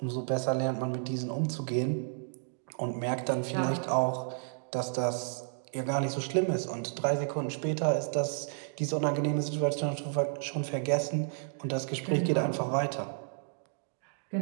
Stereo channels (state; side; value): silent; left; digital silence